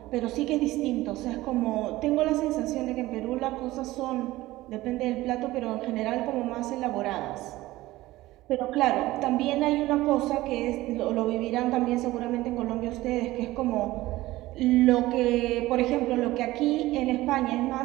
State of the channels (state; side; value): quieter; left; 17.6 dB